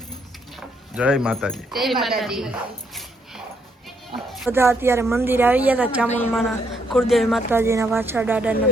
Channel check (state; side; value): normal; both; correlation 0.73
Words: જય માતાજી. જય માતાજી બધા અત્યારે મંદિરે આવી ગયા હતા ચામુંડમાના કુળદેવી માતાજીના વાછા દાદાના